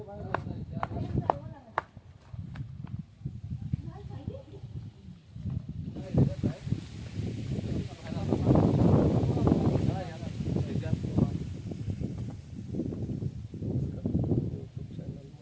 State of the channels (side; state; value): both; identical; correlation 1.00